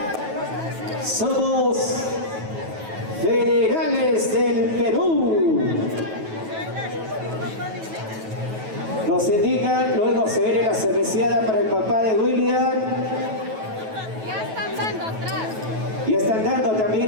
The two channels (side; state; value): left; late; 9.2 ms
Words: Somos Federales del Perú. Nos indican, luego se viene la cerveceada para el papá de William. Ya están dando atrás. Y están dando también,